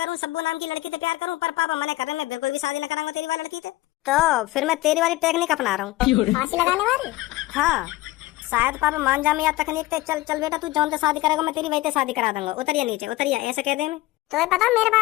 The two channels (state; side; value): quieter; right; 18.4 dB